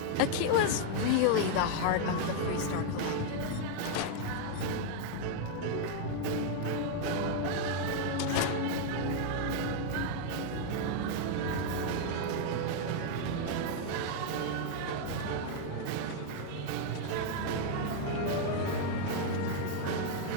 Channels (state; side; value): different; both; correlation 0.00